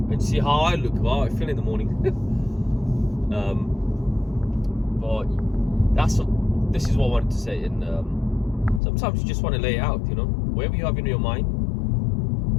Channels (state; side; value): drops out; right; at 8.8 s